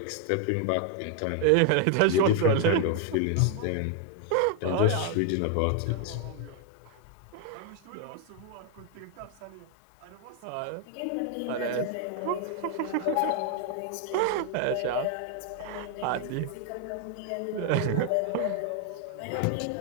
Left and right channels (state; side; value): different; both; correlation 0.00